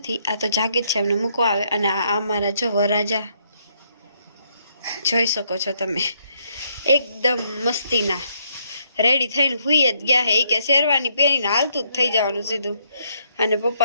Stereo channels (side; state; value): both; inverted; correlation -0.73